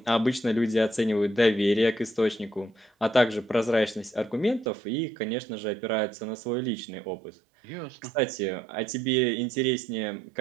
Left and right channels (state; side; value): drops out; left; at 4.7 s